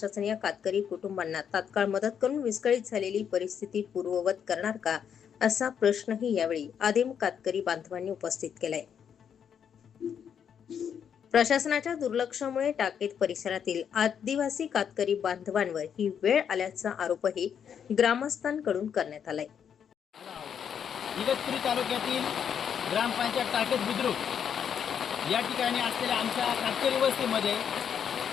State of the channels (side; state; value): right; quieter; 8.0 dB